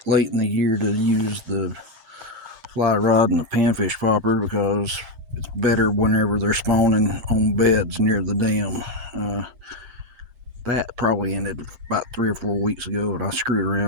late in the year to use the fly rod and the panfish popper because it's better whenever they're spawning on beds near the dam. That probably ended about 3 or 4 weeks ago, and I screwed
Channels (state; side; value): late; left; 7.6 ms